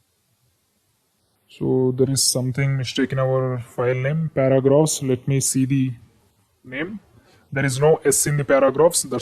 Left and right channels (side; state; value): both; identical; correlation 1.00